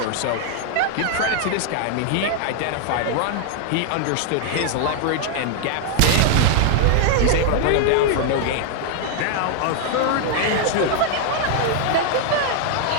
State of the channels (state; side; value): different; both; correlation 0.00